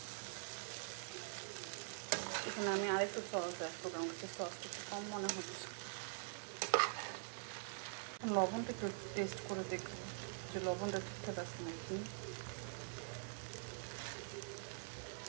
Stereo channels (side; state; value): left; silent; digital silence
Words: এখানে আমি আরেকটু সস অ্যাড করবো, আমার কাছে সসটা একটু কম মনে হচ্ছে। লবণটা একটু টেস্ট করে দেখবো যে লবণটা ঠিকঠাক আছে নাকি।